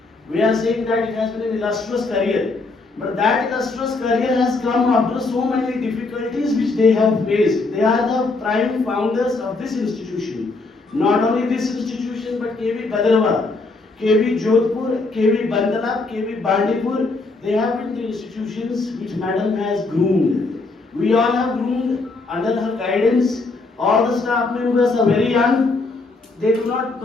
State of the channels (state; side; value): quieter; right; 3.6 dB